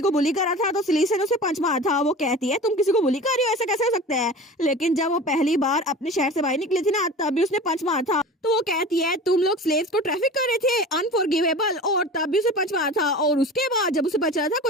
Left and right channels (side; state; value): both; normal; correlation 0.36